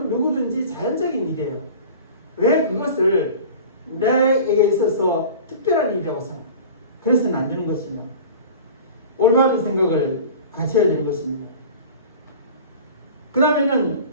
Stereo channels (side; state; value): both; inverted; correlation -0.39